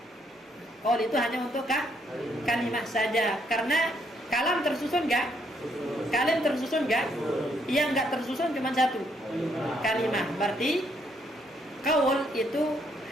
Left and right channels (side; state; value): both; normal; correlation 0.72